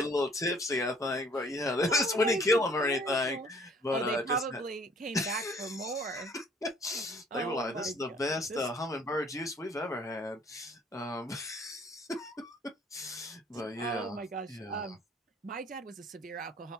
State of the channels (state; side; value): normal; both; correlation 0.57